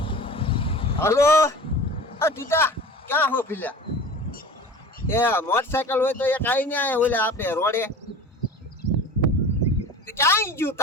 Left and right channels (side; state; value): both; normal; correlation 0.38